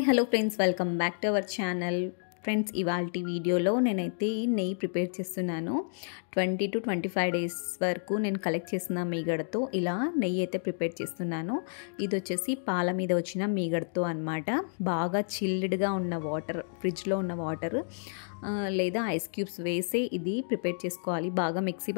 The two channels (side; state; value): right; silent; digital silence